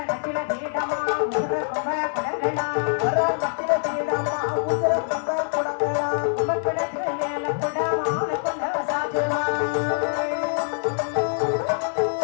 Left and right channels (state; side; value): silent; right; 62 dB below the other